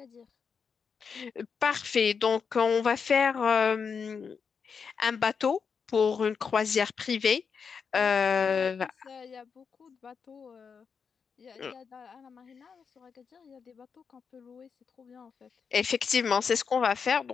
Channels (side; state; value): right; quieter; 6.1 dB